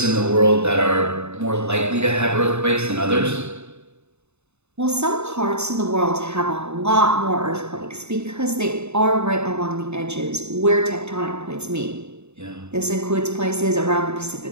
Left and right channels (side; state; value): left; late; 0.81 ms